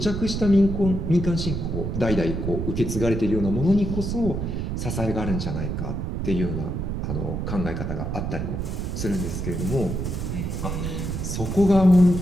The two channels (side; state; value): right; noise; rumble, 2 dB below the sound